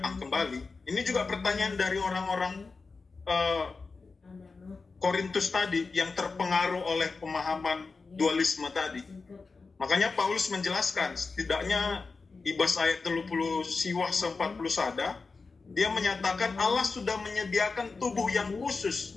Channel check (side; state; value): right; quieter; 4.3 dB